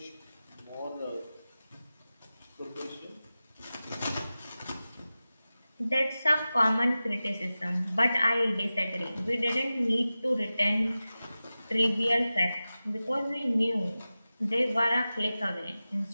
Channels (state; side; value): inverted; both; correlation -0.95